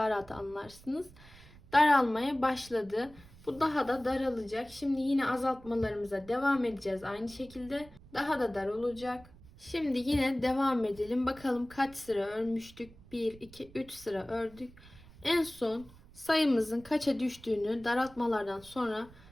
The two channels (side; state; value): right; noise; rumble, 22 dB below the sound